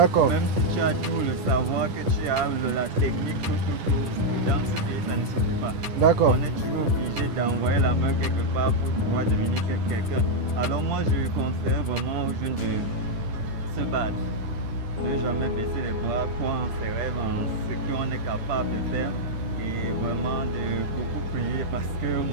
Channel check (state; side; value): late; left; 10 ms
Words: Même si tu as tout le savoir, que tu as la technique, tout, dans ce pays, ça ne suffit pas. D'accord. On est toujours obligé d'envoyer la main quelque part pour pouvoir devenir quelqu'un. Alors moi, je conseille vraiment aux jeunes de se battre, de ne jamais baisser les bras, croire en ses rêves, en ce qu'on est capable de faire. Et vraiment de beaucoup prier parce que